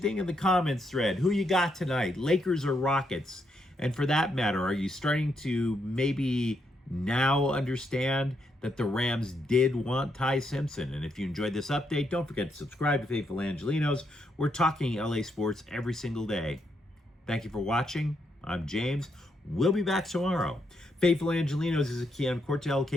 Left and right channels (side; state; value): both; normal; correlation 0.78